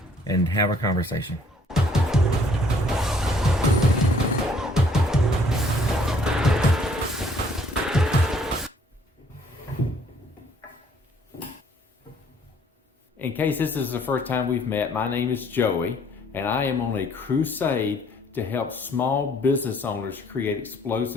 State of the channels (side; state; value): both; normal; correlation 0.61